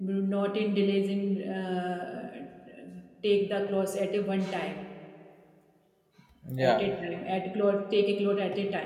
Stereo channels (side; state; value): both; identical; correlation 1.00